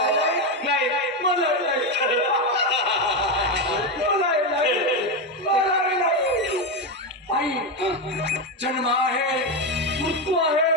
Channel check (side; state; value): both; normal; correlation 0.11